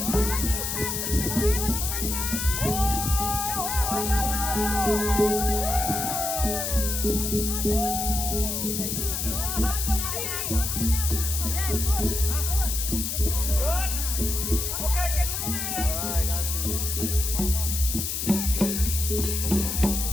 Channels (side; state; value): left; noise; hiss, 2 dB below the sound